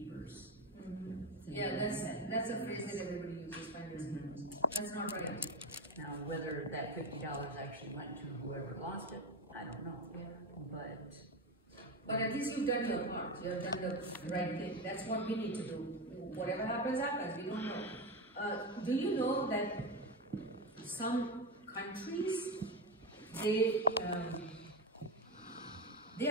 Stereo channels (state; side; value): normal; both; correlation 0.15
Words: Yeah, that's a phrase that everybody uses, finders keepers. That's not right. Now, whether that $50 actually went to whoever lost it, I don't know. Yeah. But at least you've done your part. You've done the right thing. That's what we need to do. Whatever happens, happens. We don't know. Do you know that some countries, they